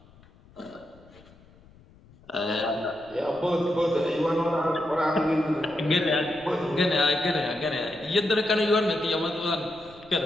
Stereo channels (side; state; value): left; noise; rumble, 26 dB below the sound